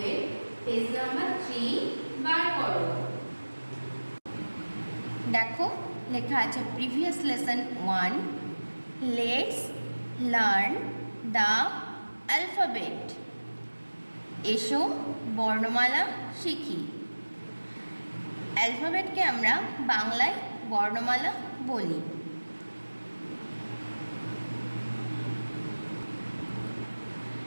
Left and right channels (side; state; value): both; inverted; correlation -1.00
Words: পেজ নাম্বার 3 বার করো। দেখো লেখা আছে previous lesson 1, let's learn the alphabet. এসো বর্ণমালা শিখি। অ্যালফাবেটকে আমরা বাংলায় বর্ণমালা বলি।